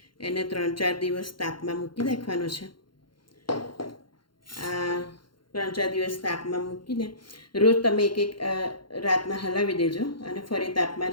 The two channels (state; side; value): late; right; 0.72 ms